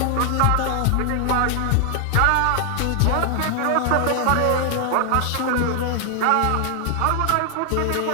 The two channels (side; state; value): both; different; correlation 0.00